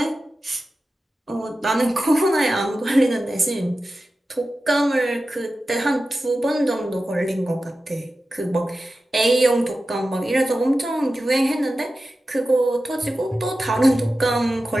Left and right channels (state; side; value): normal; both; correlation 0.93